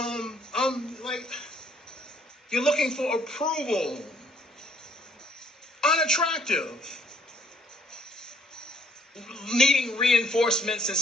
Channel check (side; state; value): both; normal; correlation 0.64